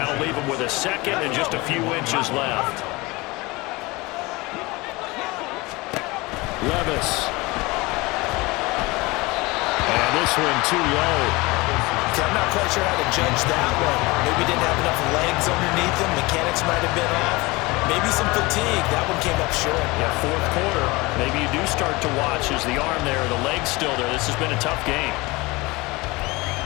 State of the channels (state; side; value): quieter; right; 23.1 dB